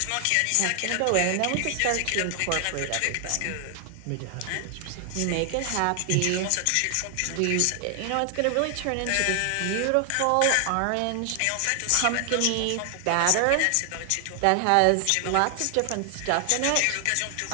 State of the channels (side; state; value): both; different; correlation 0.00